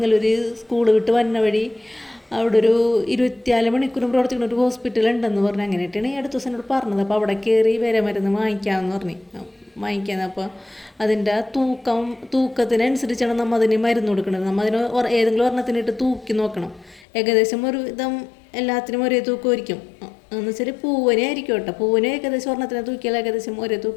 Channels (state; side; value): drops out; right; at 17.1 s